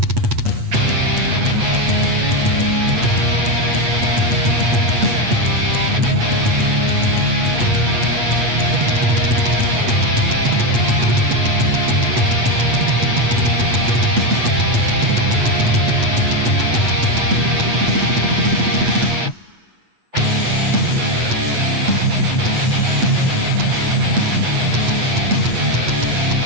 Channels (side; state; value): left; late; 8.4 ms